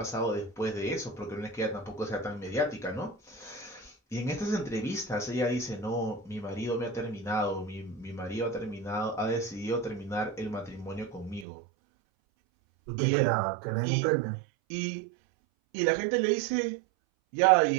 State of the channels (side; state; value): left; drops out; at 11.5 s